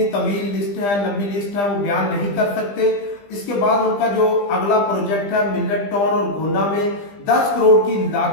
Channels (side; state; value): right; late; 20 ms